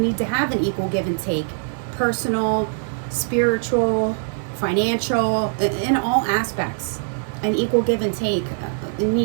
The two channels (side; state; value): left; silent; digital silence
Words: to have an equal give and take. Personal, spiritual, financial, in all aspects. An equal give and take. You